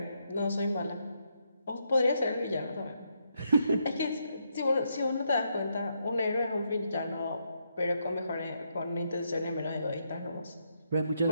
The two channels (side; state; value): both; inverted; correlation -0.78